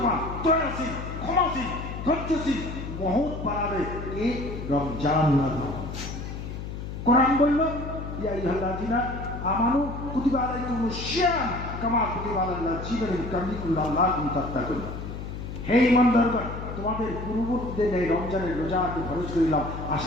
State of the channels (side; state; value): left; noise; hum, 8 dB below the sound